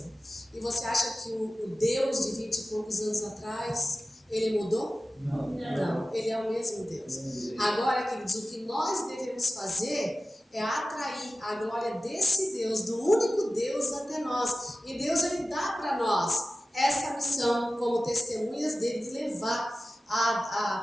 E você acha que o Deus de 20 e poucos anos atrás, ele mudou? Não, ele é o mesmo Deus. Agora, queridos, o que nós devemos fazer é atrair a glória desse Deus, do único Deus, até nós. E Deus, ele dá para nós essa missão como testemunhas dele, de levar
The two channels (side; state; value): both; normal; correlation 0.95